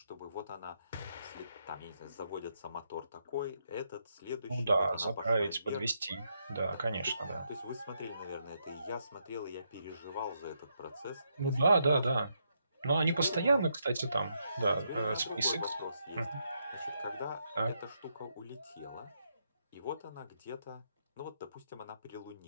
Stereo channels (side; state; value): both; inverted; correlation -0.79